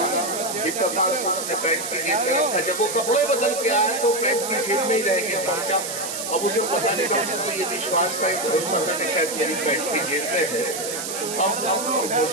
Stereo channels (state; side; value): noise; right; hiss, 5 dB below the sound